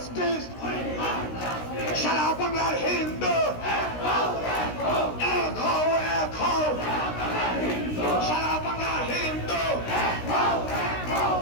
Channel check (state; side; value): late; right; 16 ms